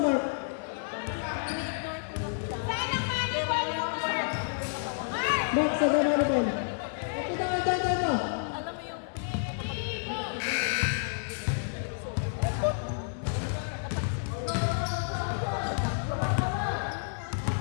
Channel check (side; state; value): right; silent; digital silence